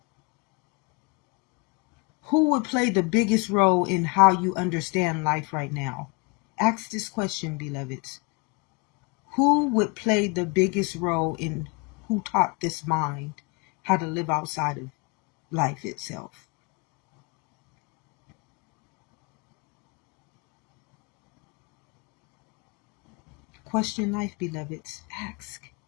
Who would play the biggest role in how you understand life right now? Ask this question, beloveds. Who would play the biggest role in who taught this mind how to live outside of life itself? Question life, beloveds. Ask.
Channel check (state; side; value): quieter; right; 29.4 dB